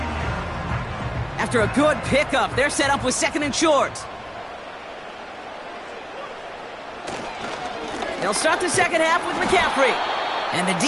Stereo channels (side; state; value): both; identical; correlation 1.00